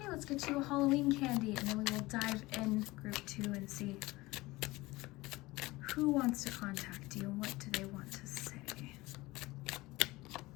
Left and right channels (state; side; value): quieter; right; 20.4 dB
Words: let's get you a Halloween candy and then we will dive in group 2 and see who wants to contact you and what do they want to say.